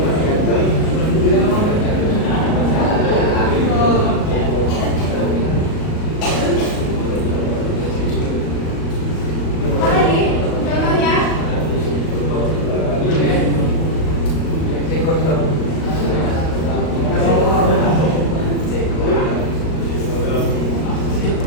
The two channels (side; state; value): right; late; 38 ms